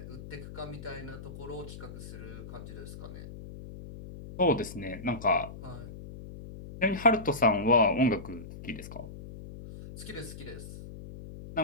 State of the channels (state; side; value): noise; left; hum, 12 dB below the sound